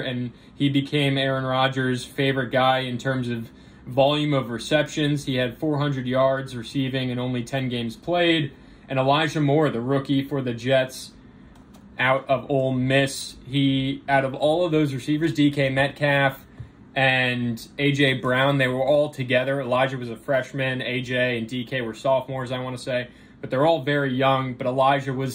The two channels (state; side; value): identical; both; correlation 1.00